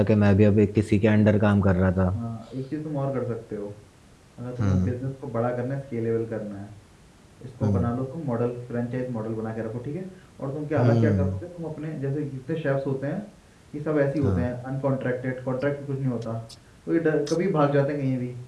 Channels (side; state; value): both; identical; correlation 1.00